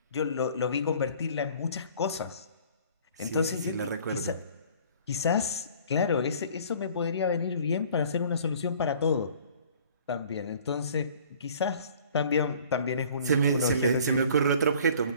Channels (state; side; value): inverted; both; correlation -0.51